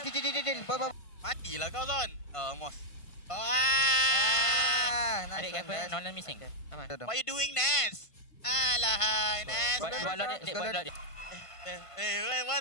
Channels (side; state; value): right; late; 1.5 ms